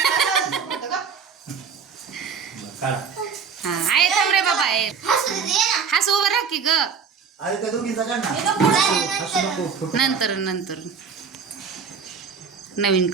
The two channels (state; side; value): quieter; left; 6.1 dB